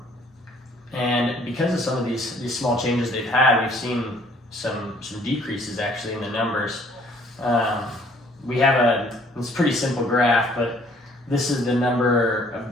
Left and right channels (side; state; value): both; normal; correlation 0.59